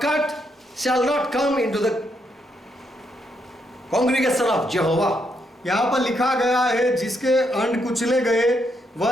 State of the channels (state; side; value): normal; both; correlation 0.77